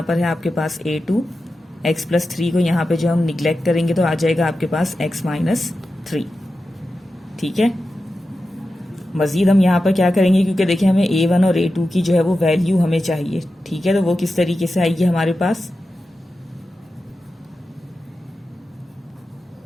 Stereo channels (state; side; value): normal; both; correlation 0.92